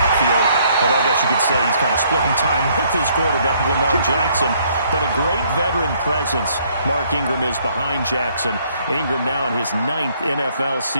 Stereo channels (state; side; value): inverted; both; correlation -0.66